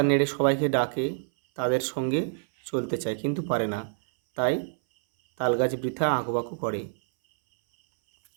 নেড়ে সবাইকে ডাকে, তাদের সঙ্গে চলতে চায় কিন্তু পারে না, তাই তাল গাছ বৃথা আঁকুপাকু করে।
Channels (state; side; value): silent; left; 60 dB below the other